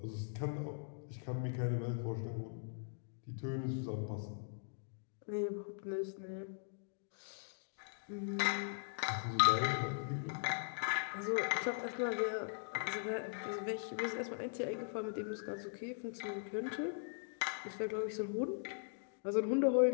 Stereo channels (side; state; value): right; silent; digital silence